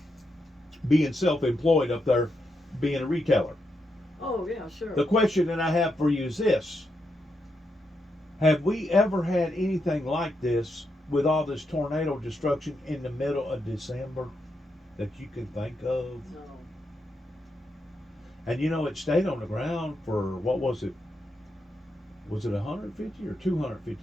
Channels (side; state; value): both; normal; correlation 0.83